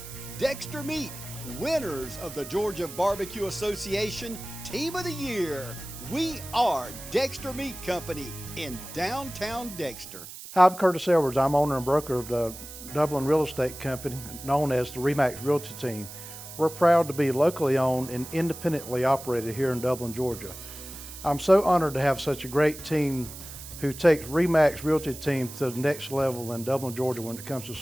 Dexter Meat, winners of the Georgia Barbecue Association Team of the Year. We are Dexter Meat Company in downtown Dexter. Hi, I'm Curtis Edwards. I'm owner and broker of the Dublin real estate company known as the RE/MAX Realty Team. We're proud to be locally owned and independently operated here in Dublin, Georgia. I'm so honored to have such a great team who takes RE/MAX Realty Team to the next level in Dublin, Georgia when it comes to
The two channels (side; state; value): right; noise; hiss, 13 dB below the sound